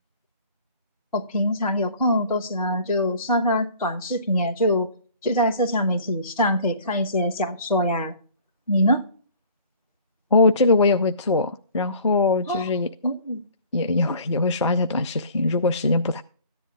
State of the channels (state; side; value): inverted; both; correlation -0.49